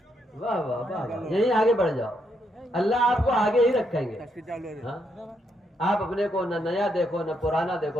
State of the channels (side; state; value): both; normal; correlation 0.77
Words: واہ واہ واہ واہ، یہیں آگے بڑھ جاؤ، اللہ آپ کو آگے ہی رکھیں گے۔ ہاں، آپ اپنے کو نہ نیا دیکھو نہ پرانا دیکھو،